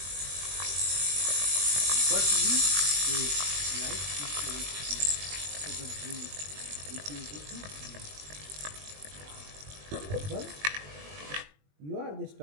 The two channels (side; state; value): left; late; 20 ms